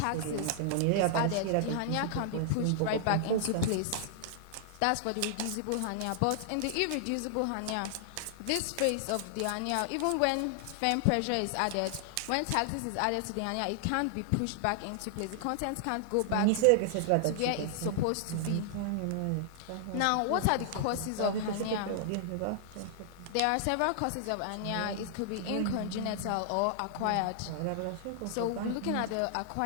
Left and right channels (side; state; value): both; different; correlation -0.01